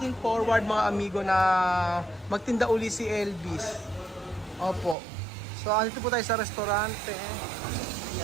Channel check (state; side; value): drops out; left; at 5.0 s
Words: forward mga amigo na magtinda uli si Elvis. Opo. So andito po tayo sa restaurante.